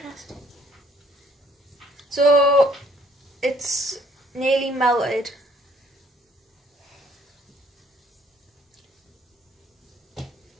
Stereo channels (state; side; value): normal; both; correlation 0.63